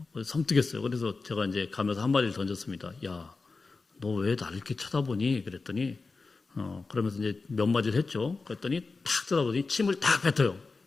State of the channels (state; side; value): quieter; right; 4.0 dB